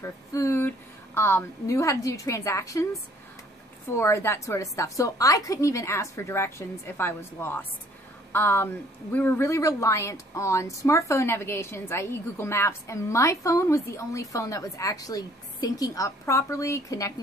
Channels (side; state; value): both; normal; correlation 0.59